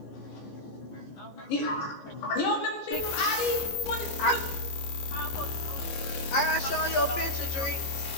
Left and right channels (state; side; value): late; right; 14 ms